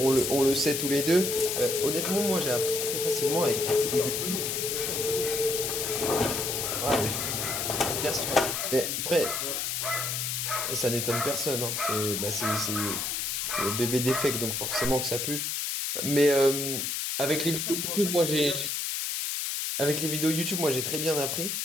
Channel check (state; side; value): noise; left; hiss, 1 dB below the sound